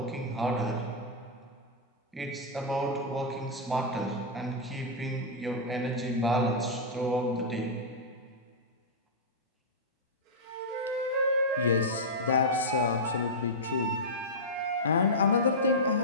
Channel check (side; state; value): both; normal; correlation -0.10